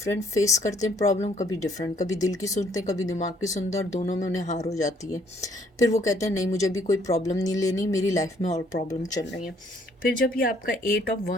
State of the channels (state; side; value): normal; both; correlation 0.64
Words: फेस करते हैं प्रॉब्लम, कभी डिफरेंट, कभी दिल की सुनते हैं, कभी दिमाग की सुनते हैं, और दोनों में उन्हें हार हो जाती है। फिर वो कहते हैं नहीं, मुझे अभी कोई प्रॉब्लम नहीं लेनी, मेरी लाइफ में और प्रॉब्लम चल रही है। फिर जब ये आपका 8 ऑफ